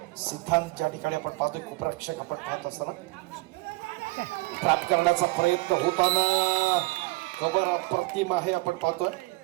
सिद्धांत ज्या ठिकाणी आपण पाहतोय खूप रक्षक आपण पाहत असताना ट्रॅप करण्याचा प्रयत्न होताना खबर अप्रतिम आहे आपण पाहतोय.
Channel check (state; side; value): quieter; left; 22.2 dB